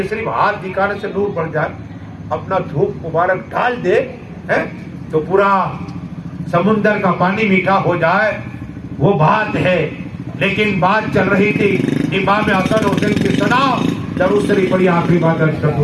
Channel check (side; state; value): both; identical; correlation 1.00